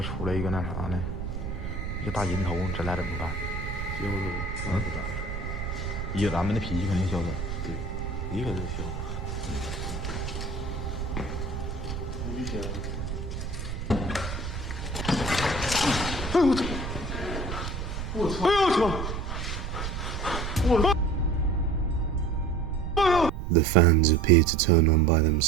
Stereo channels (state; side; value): noise; right; rumble, 5 dB below the sound